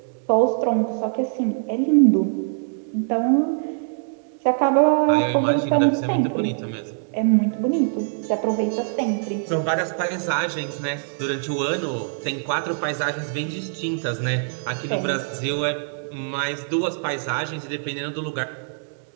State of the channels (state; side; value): silent; left; digital silence